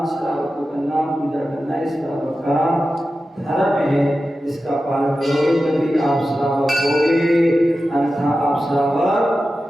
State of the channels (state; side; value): normal; both; correlation 0.92